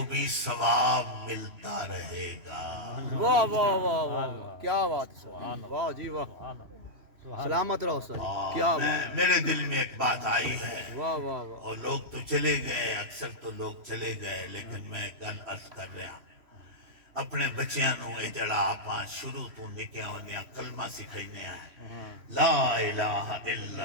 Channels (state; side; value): late; left; 3.0 ms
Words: بھی ثواب ملتا رہے گا۔ واہ واہ واہ واہ کیا بات ہے واہ جی واہ سلامت رہو سر کیا بات میرے دل میں ایک بات آئی ہے، واہ واہ واہ اور لوگ تو چلے گئے، اکثر تو لوگ چلے گئے، لیکن میں گل عرض کر رہا ہوں اپنے بچیاں نو اے جڑا آپاں شروع تو نکیاں ہوندیاں کلمہ سکھائینے ہیں، لا الہ الا